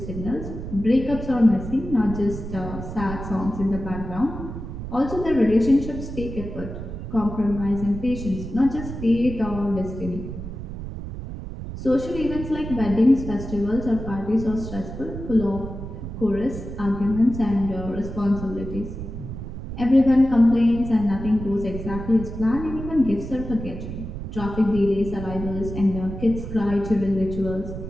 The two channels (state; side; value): noise; right; rumble, 8 dB below the sound